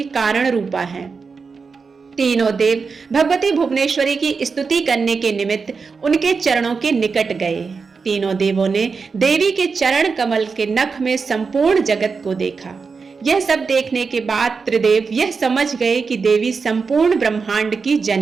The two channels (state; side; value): quieter; left; 5.0 dB